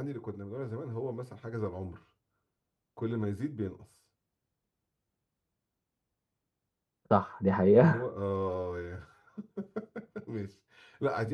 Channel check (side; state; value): both; identical; correlation 1.00